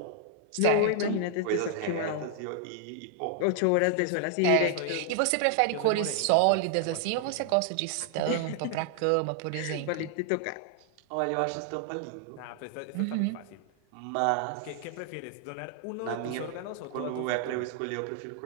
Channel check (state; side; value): different; both; correlation 0.00